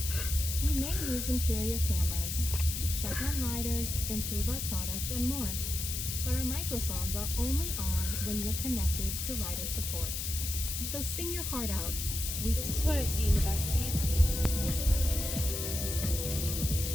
We may use interior cameras to check on riders, improve our products, and more. But our microphones are only on when you're connected to rider support. So sing your heart out. This is what I see in the back seat.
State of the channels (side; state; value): left; noise; hiss, 3 dB below the sound